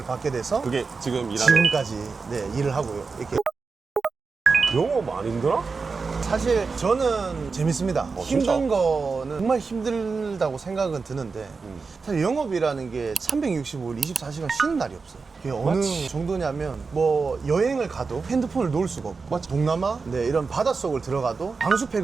받게 돼서 그게 지금 일하는. 지금까지 네, 일을 하고요. 이렇게 영어 많이 힘들어? 사실 저는 재밌습니다. 진짜? 힘든 거는 정말 힘들다고 생각은 드는데 사실 영업이라는 게 365일 24시간 쉬는 날이 없어요. 그게 어느 맞지. 정도냐면 뭐 여행을 가도 핸드폰을 놓을 수가 없고 맞지. 동남아 네, 이런 바닷속을 들어가도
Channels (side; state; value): left; quieter; 4.6 dB